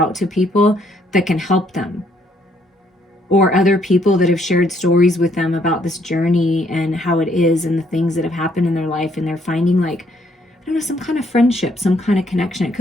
to people that can help them, or other people that have shared stories with them about this journey and how it is and the things that have happened in their life. And they're finding, like, I don't know, some kind of friendship, some kind of connection. It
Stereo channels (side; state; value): both; normal; correlation 0.69